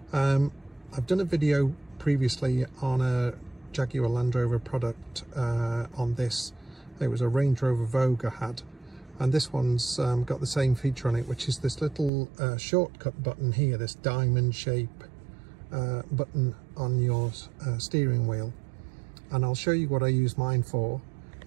I've done a video previously on a Jaguar Land Rover product on this. It was a Range Rover Vogue I had, and this one's got the same feature on it, which is this little shortcut button here, this diamond shape button on your steering wheel. And I'll show you what I use mine for.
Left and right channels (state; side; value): drops out; left; at 12.1 s